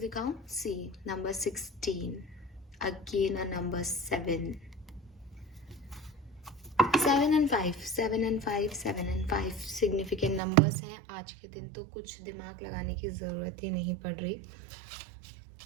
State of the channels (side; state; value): left; drops out; at 10.4 s